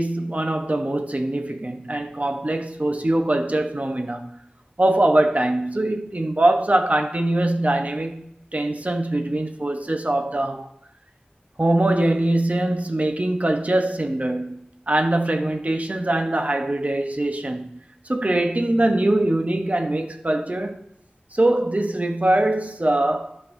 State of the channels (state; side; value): normal; both; correlation 0.96